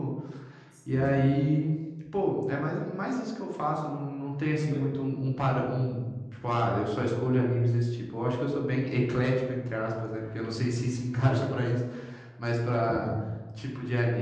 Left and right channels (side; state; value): both; identical; correlation 1.00